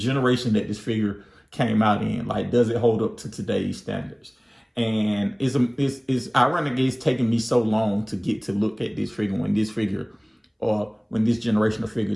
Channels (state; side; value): identical; both; correlation 1.00